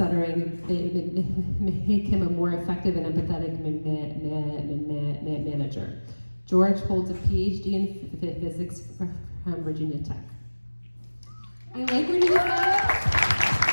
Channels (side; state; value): both; inverted; correlation -1.00